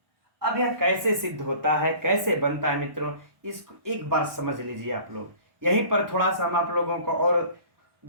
अब यह कैसे सिद्ध होता है, कैसे बनता है मित्रों, इसको एक बार समझ लीजिए आप लोग। यहीं पर थोड़ा सा हम आप लोगों को और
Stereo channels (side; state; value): left; late; 1.1 ms